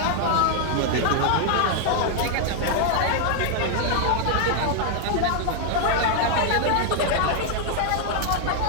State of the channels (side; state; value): both; different; correlation 0.00